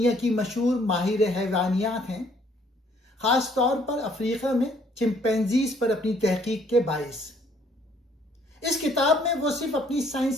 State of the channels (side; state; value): both; normal; correlation 0.63